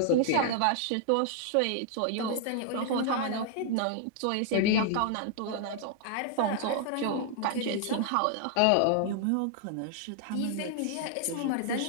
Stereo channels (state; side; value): different; both; correlation -0.01